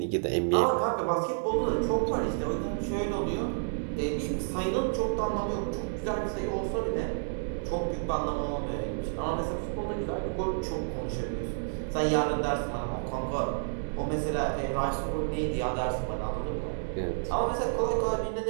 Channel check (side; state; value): left; silent; digital silence